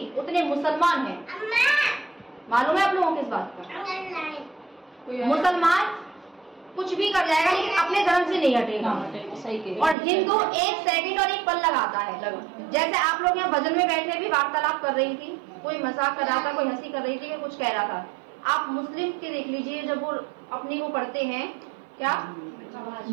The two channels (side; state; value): left; drops out; at 10.0 s